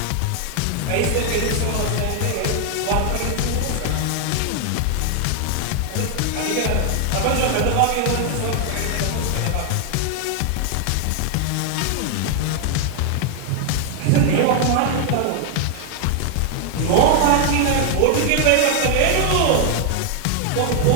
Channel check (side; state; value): both; different; correlation 0.00